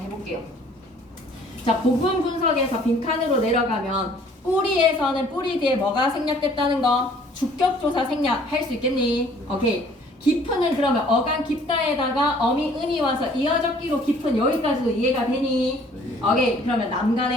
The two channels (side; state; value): both; normal; correlation 0.56